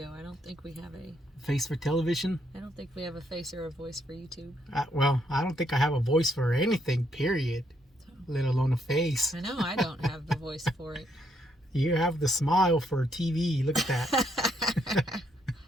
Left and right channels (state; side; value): normal; both; correlation 0.74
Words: I don't think we have a. face for television. I don't think we have a face or a voice for YouTube. Well, I don't think I have a voice for anything. Period. Let alone a face. I know I don't have the voice for it. You have the smile for TV. Look at that.